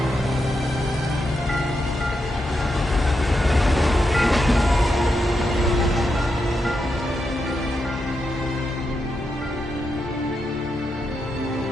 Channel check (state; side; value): normal; both; correlation 0.85